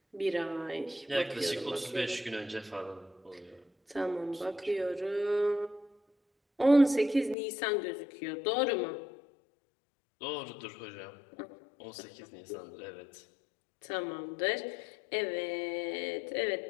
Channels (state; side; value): drops out; right; at 7.4 s